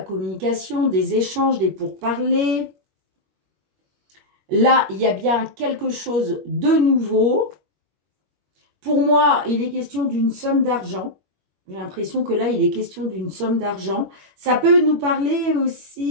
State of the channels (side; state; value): left; late; 21 ms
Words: communication, des échanges, des pourparlers. Là, il y a bien quelque chose de nouveau. Pour moi, il est question d'une somme d'argent. J'ai l'impression que là, il est question d'une somme d'argent. Ça peut nous parler